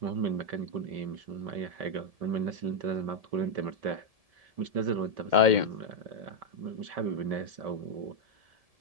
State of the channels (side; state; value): left; late; 1.7 ms